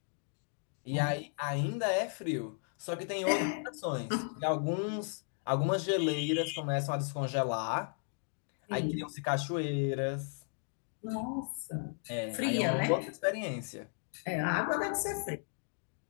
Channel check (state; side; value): silent; right; 54 dB below the other